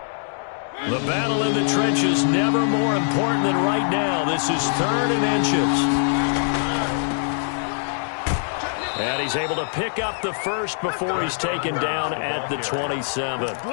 The battle in the trenches never more important than right now. This is 3rd and inches. And he's able to pick up the first before he's taken down at the 27.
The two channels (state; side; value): silent; right; digital silence